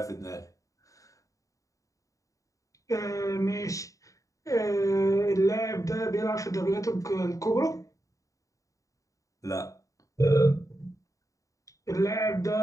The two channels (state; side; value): late; right; 0.16 ms